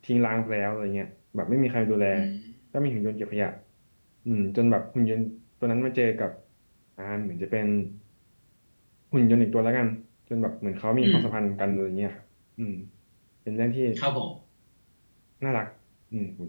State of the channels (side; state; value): both; inverted; correlation -1.00